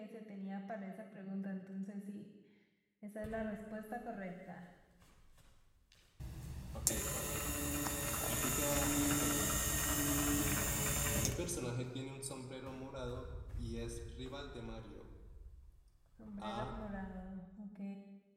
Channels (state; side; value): identical; both; correlation 1.00